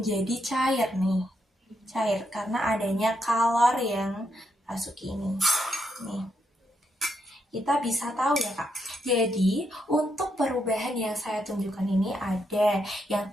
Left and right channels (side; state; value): both; normal; correlation 0.80